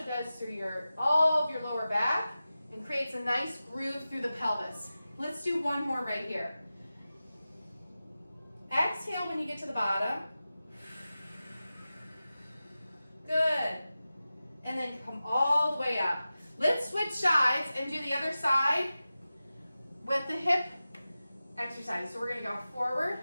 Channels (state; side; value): inverted; both; correlation -0.95